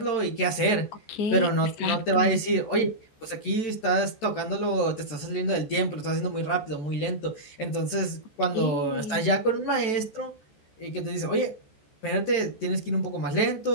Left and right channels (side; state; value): right; late; 14 ms